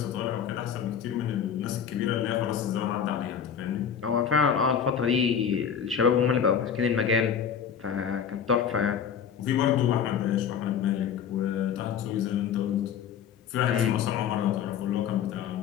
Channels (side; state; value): right; quieter; 7.9 dB